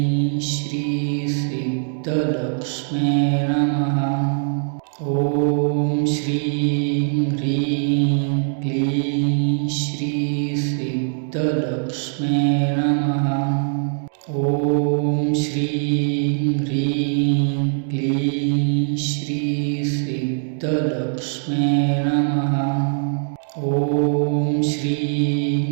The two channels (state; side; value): silent; left; digital silence